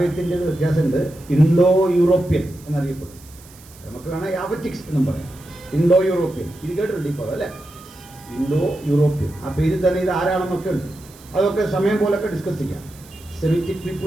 വ്യത്യാസമുണ്ട്. ഇൻഡോ യൂറോപ്യൻ എന്നറിയപ്പെടും. നമുക്ക് വേണം യാവറ്റിക്സ് എന്നും പറയാം. ഇൻഡോ യൂറോപ്യൻ, ഇത് കേട്ടിട്ടുണ്ട് ഇപ്പോൾ അല്ലേ? ഇൻഡോ യൂറോപ്യൻ, ആ പേരിൽ തന്നെ ഇത് ആരാണെന്നൊക്കെ ഉണ്ട്. അതൊക്കെ സമയം പോലൊക്കെ ഡിസ്കസ് ചെയ്യാം. സെമിറ്റിക്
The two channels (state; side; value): noise; right; hiss, 23 dB below the sound